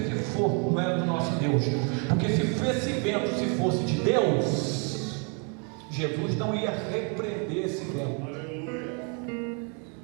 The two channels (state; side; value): quieter; left; 37.2 dB